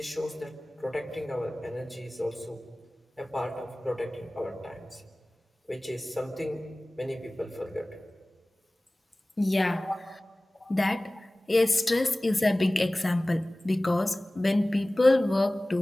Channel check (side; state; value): both; normal; correlation 0.98